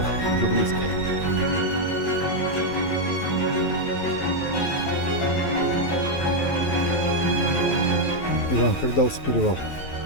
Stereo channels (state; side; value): late; right; 11 ms